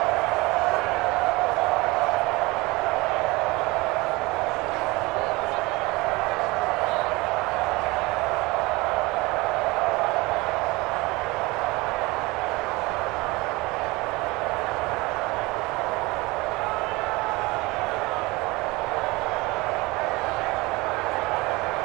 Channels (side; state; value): left; quieter; 22.9 dB